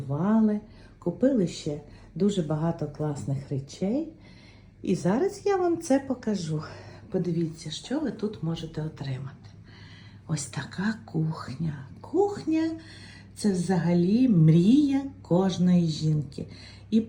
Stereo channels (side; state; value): both; identical; correlation 1.00